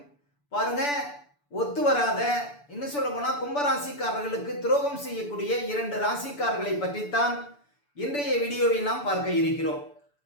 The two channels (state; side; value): late; right; 6.9 ms